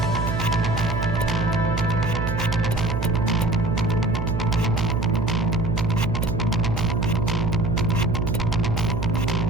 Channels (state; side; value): noise; right; hum, 1 dB below the sound